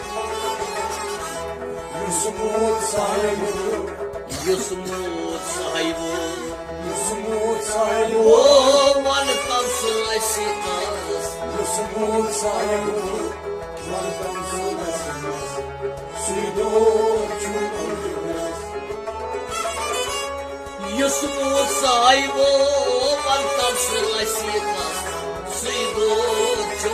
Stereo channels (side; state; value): both; identical; correlation 1.00